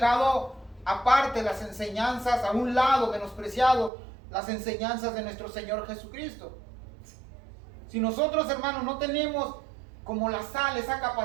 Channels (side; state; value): left; drops out; at 3.9 s